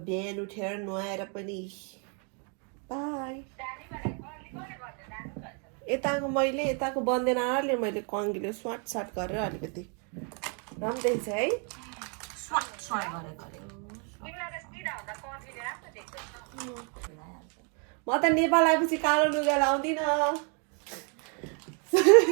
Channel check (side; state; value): left; quieter; 38.7 dB